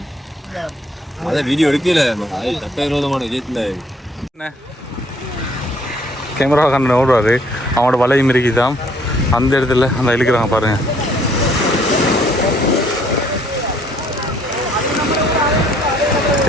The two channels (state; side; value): normal; both; correlation 0.64